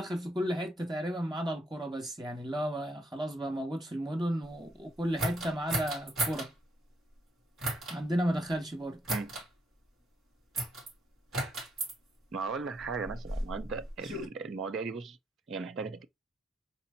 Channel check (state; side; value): normal; both; correlation 0.74